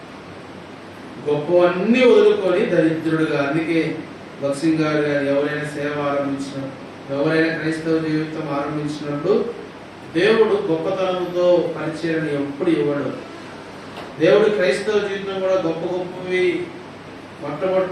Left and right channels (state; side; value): identical; both; correlation 1.00